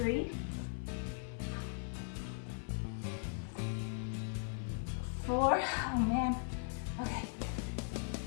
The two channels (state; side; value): silent; right; digital silence